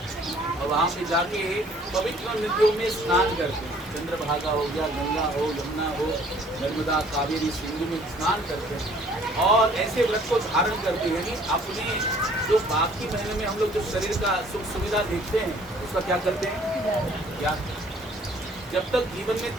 और वहाँ पे जाके पवित्र नदियों में स्नान करते हैं। चंद्रभागा हो गया, गंगा हो, यमुना हो, नर्मदा, कावेरी, सिंधु में स्नान करते हैं और ऐसे व्रत को धारण करते हैं। यानी अपने जो बाकी महीने में हम लोग जो शरीर का सुख सुविधा देखते हैं उसका क्या करते हैं, त्याग। जब तक जीवन में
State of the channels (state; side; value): normal; both; correlation 0.57